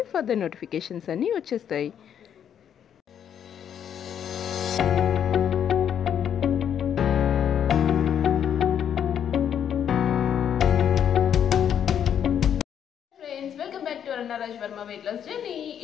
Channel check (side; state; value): right; quieter; 9.0 dB